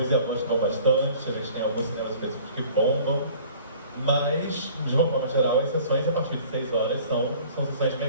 e a voz estão bastante, a gente tem alguns cinemas específicos que bombam, mas, de uma forma geral, as sessões a partir de 6 horas são sessões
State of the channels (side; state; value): both; inverted; correlation -0.50